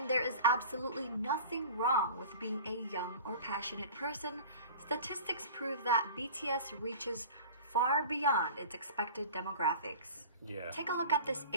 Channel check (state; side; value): inverted; both; correlation -0.39